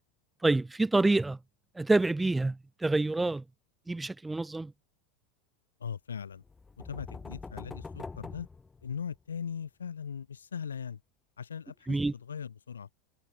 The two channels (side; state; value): both; normal; correlation 0.83